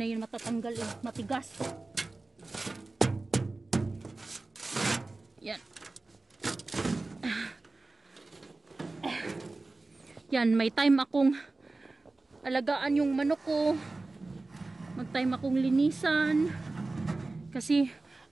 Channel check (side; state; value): left; quieter; 3.3 dB